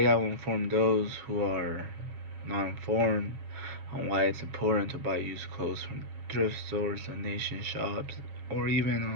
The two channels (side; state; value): left; late; 7.1 ms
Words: I will inform those who are not informed on why it's important to buy used clothes from thrift stores, donation shops, or